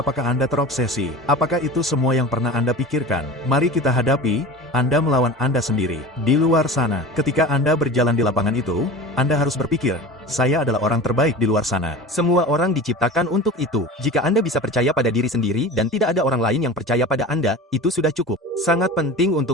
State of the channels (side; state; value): both; normal; correlation 0.34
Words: Anda terobsesi? Apakah itu semua yang pernah Anda pikirkan? Mari kita hadapi, Anda melawan Anda sendiri. Di luar sana, ketika Anda berjalan di lapangan itu, Anda harus berpikir, saya adalah orang terbaik di luar sana. Semua orang diciptakan untuk itu. Jika Anda bisa percaya pada diri sendiri dan tidak ada orang lain yang percaya pada Anda, itu sudah cukup. Sangat penting